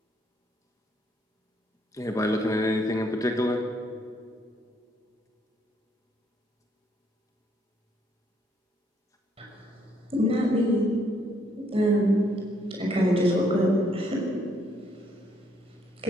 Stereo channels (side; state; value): both; normal; correlation 0.70